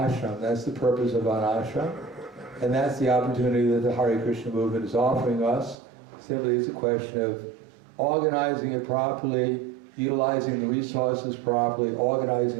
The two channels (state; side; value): drops out; left; at 5.8 s